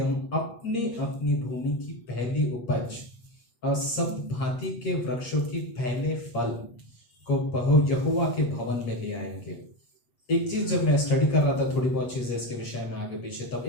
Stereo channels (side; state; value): right; late; 8.5 ms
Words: अपनी अपनी भूमि की पहली उपज और सब भांति के वृक्षों की पहले फल को यहोवा के भवन में ले आएंगे। एक चीज जब मैं स्टडी कर रहा था, थोड़ी बहुत चीजें इसके विषय में आगे पीछे, तब